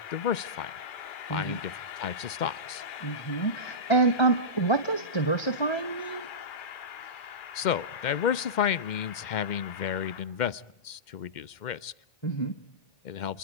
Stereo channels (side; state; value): right; late; 2.1 ms